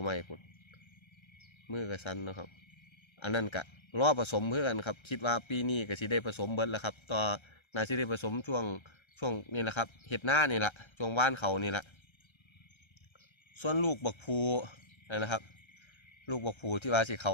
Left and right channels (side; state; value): right; late; 1.3 ms